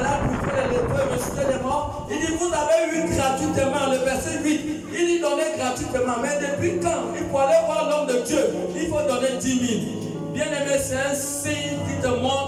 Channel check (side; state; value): both; identical; correlation 1.00